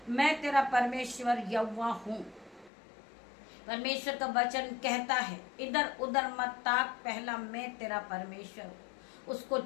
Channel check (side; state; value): right; drops out; at 2.7 s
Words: तेरा परमेश्वर यहोवा हूँ। परमेश्वर का वचन कहता है इधर उधर मत ताक, पहला मैं तेरा परमेश्वर हूँ, उसको